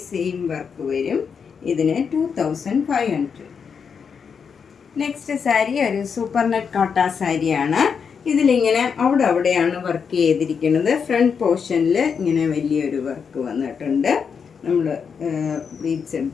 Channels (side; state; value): right; quieter; 6.4 dB